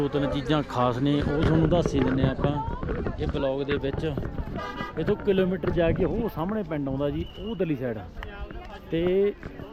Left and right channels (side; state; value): both; identical; correlation 1.00